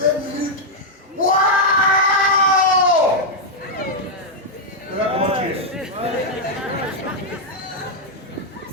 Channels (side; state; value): both; normal; correlation -0.03